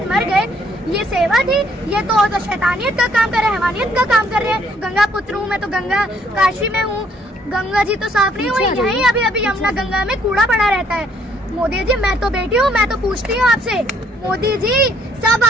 मर गए। ये सेवा थी? ये तो शैतानियत का काम कर रहे हैं, हैवानियत का काम कर रहे हैं। गंगा पुत्र हूँ मैं, तो गंगा काशी में हूँ, गंगा जी तो साफ नहीं हुई, यहीं अभी अभी यमुना गंगा में कूड़ा पड़ा रहता है। मोदी जी, मैं तो बेटी हूँ, मैं तो पूछती हूँ आपसे, मोदी जी सब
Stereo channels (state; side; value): normal; both; correlation 0.66